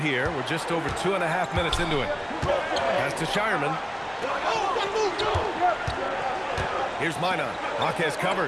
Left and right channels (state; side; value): identical; both; correlation 1.00